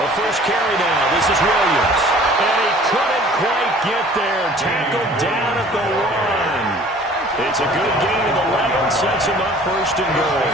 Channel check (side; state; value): both; normal; correlation 0.50